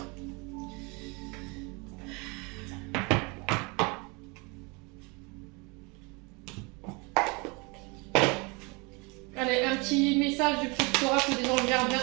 Allez, un petit message du petit oracle des anges gardiens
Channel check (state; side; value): quieter; left; 28.9 dB